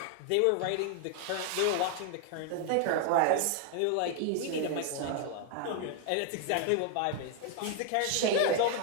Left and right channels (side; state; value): both; different; correlation 0.00